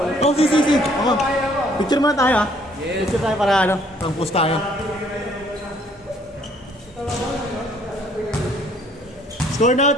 Oh, si. Okay. Picture muna tayo ha. Yes. Picture tayo para ano, pang post tayo. Score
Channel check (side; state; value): both; normal; correlation 0.62